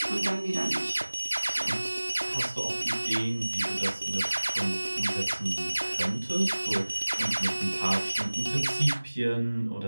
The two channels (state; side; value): inverted; both; correlation -1.00